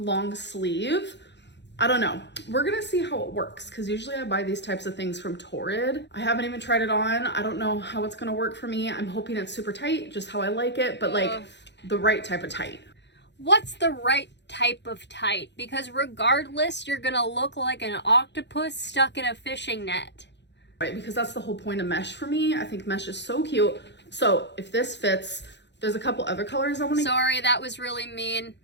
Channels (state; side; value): late; right; 0.51 ms